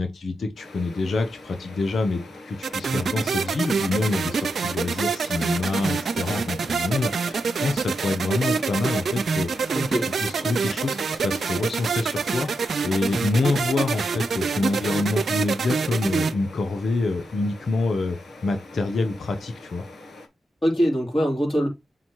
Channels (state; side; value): normal; both; correlation 0.85